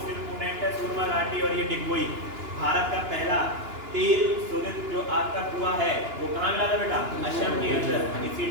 इम्पोर्टेंट है सूरमा घाटी और ये डिगबोई। भारत का पहला तेल शोधित जो आपका कुआं है वो कहाँ मिला था बेटा? असम के अंदर, इसी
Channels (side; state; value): left; late; 2.9 ms